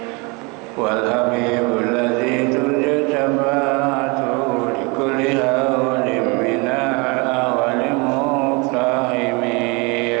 Wal habibul ladzi turja syafa'atuhu li kulli hawlin minal awwali muqtahimi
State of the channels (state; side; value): quieter; left; 29.0 dB